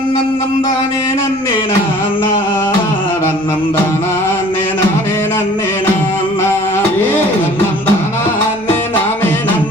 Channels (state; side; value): noise; left; rumble, 26 dB below the sound